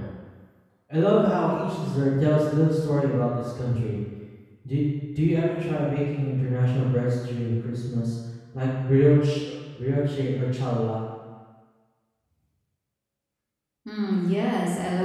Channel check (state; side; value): identical; both; correlation 1.00